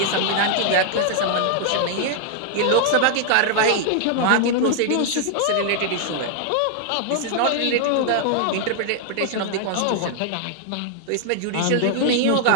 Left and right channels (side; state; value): both; different; correlation 0.00